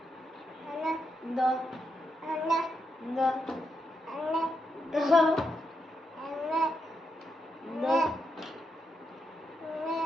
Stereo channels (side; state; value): both; normal; correlation 0.82